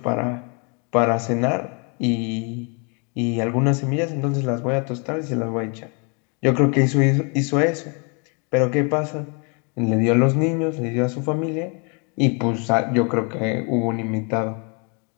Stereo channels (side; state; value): right; quieter; 35.0 dB